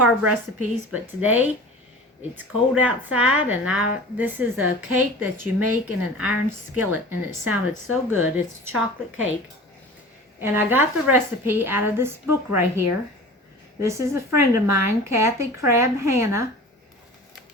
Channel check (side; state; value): both; normal; correlation 0.39